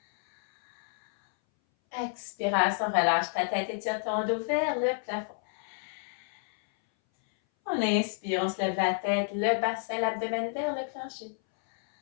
Expiration, relâche ta tête et tire ton dos vers le plafond. On inspire, on se lève la tête, le bassin, l'abdomen vers le plancher.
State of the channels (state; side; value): silent; right; 58 dB below the other